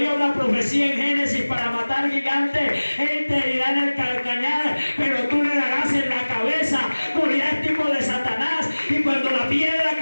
una profecía en Génesis: para matar gigantes, él te herirá en el calcañar, pero tú le darás en la cabeza. Goliat es tipo de Satanás, y cuando la piedra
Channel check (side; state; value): both; inverted; correlation -1.00